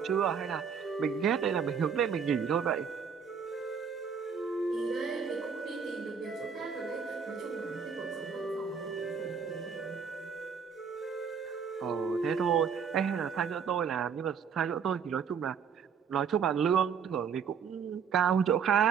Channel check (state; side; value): quieter; left; 6.7 dB